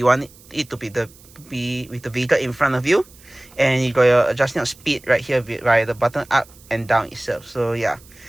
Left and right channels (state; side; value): noise; right; hiss, 25 dB below the sound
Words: want it to be with the vehicle in front of you, and you got your adjusting of speed right here via the button up and down itself. So yeah,